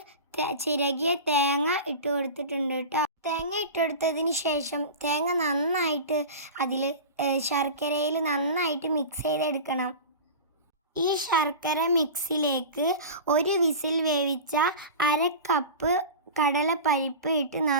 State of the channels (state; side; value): inverted; both; correlation -0.31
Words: ചിരകിയ തേങ്ങ ഇട്ട് കൊടുത്തിട്ടുണ്ട് കേട്ടോ. തേങ്ങ ഇട്ടെടുത്തതിന് ശേഷം തേങ്ങ നന്നായിട്ട് അതിൽ ശർക്കരയിൽ നന്നായിട്ട് മിക്സ് ചെയ്തെടുക്കണം. ഈ ശർക്കര മിക്സിലേക്ക് 1 വിസിൽ വേവിച്ച 1/2 കപ്പ് കടലപ്പരിപ്പ് ഇട്ട്